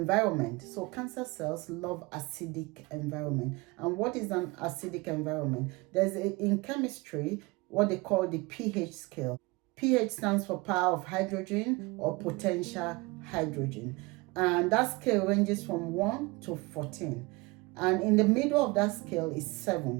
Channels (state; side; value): quieter; left; 24.5 dB